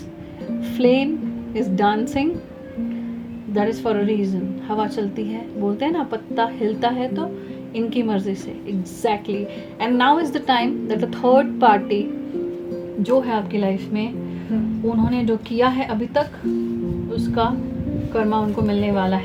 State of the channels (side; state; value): both; identical; correlation 1.00